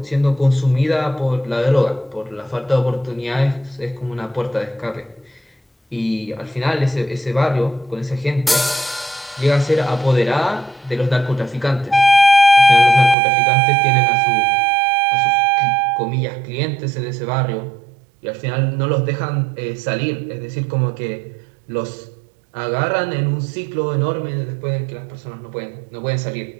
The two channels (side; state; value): left; drops out; at 13.2 s